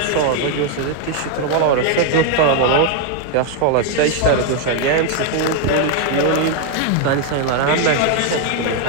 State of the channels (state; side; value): different; both; correlation 0.00